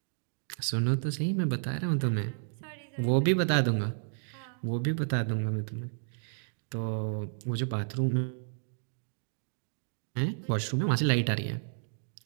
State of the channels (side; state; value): left; silent; digital silence